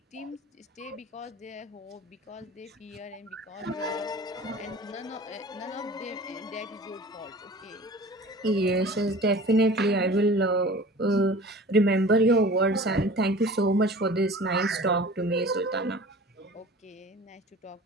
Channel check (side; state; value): both; normal; correlation 0.42